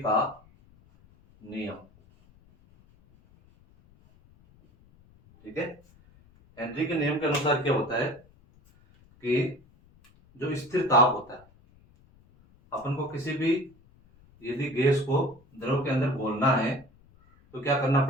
का नियम। ठीक है, हेनरी के नियम के अनुसार क्या होता है कि जो स्थिर ताप होता है, अपन को किसी भी यदि गैस को द्रव के अंदर घोलना है तो क्या करना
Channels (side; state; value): left; noise; rumble, 29 dB below the sound